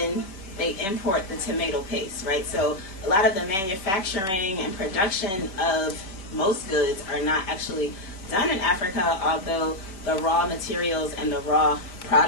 they import the tomato paste, right? So a lot of the manufacturing and production of most goods are not actually done in Africa, although the raw materials and the raw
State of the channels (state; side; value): late; right; 5.1 ms